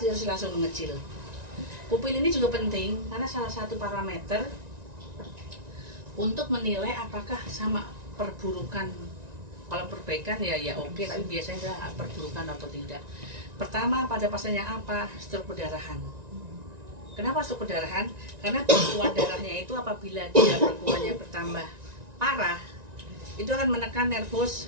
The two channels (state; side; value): late; left; 1.9 ms